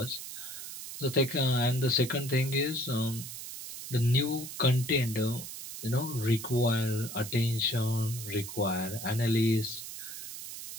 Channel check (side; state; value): right; noise; hiss, 9 dB below the sound